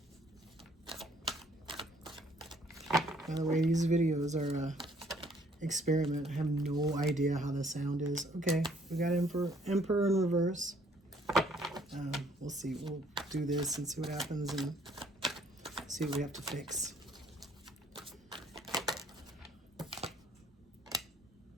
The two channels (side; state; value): both; normal; correlation 0.62